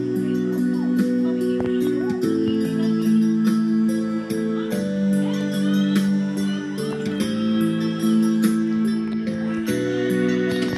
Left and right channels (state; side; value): identical; both; correlation 1.00